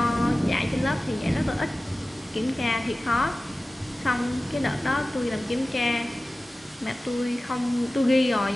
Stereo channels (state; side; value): normal; both; correlation 0.96